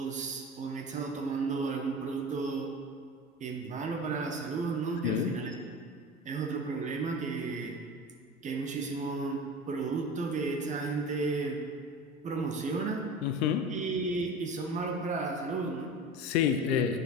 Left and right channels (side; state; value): both; normal; correlation 0.33